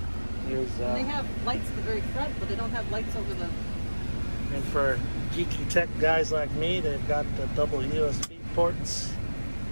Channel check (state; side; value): inverted; both; correlation -1.00